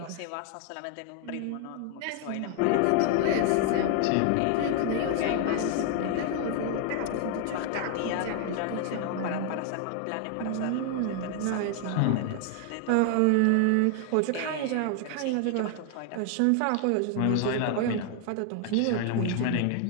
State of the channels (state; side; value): different; both; correlation 0.00